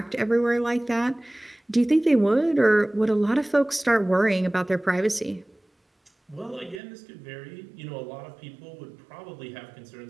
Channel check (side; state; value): left; drops out; at 6.8 s